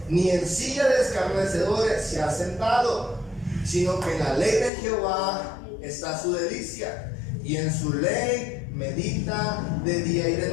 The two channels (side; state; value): right; drops out; at 4.7 s